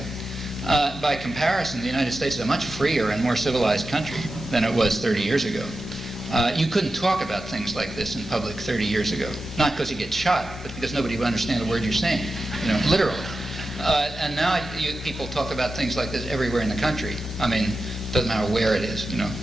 By comparison, the United States is a much freer and more civilized country than it was 30 years ago. You couldn't talk about things like this in public 30 years ago. Not because you get shot, but because nobody would understand the word you're saying, literally. And now people talk about things like this everywhere in the country. I mean, doesn't matter where it is,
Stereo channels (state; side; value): normal; both; correlation 0.91